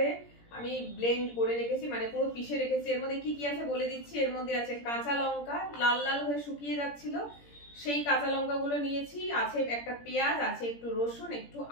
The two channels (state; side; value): late; right; 17 ms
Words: আমি ব্লেন্ড করে রেখেছি, মানে পুরো পিষে রেখেছি। এর মধ্যে কি কি আছে বলে দিচ্ছি। এর মধ্যে আছে কাঁচা লঙ্কা, লাল লাল হয়ে শুকিয়ে যাচ্ছিল, সেই কাঁচা লঙ্কা গুলো নিয়েছি। আছে একটা পেঁয়াজ, আছে একটু রসুন, একটু